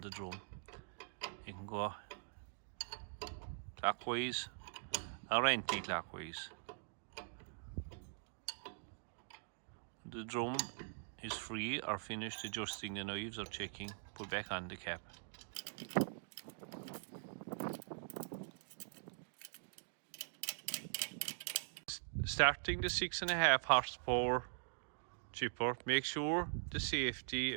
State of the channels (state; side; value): silent; left; digital silence